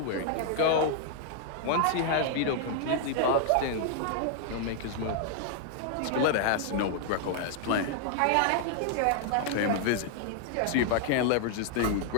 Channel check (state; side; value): different; both; correlation 0.00